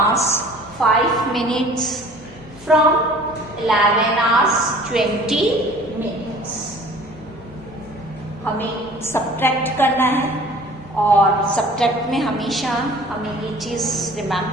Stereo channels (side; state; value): both; normal; correlation 0.49